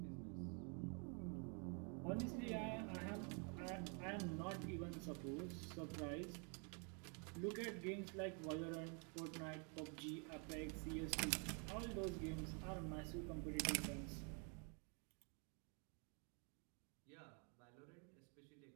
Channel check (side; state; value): left; quieter; 37.1 dB